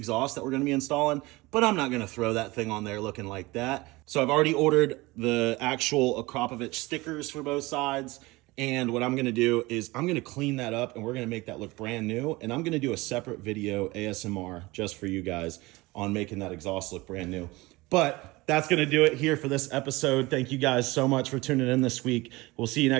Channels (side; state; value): left; quieter; 21.7 dB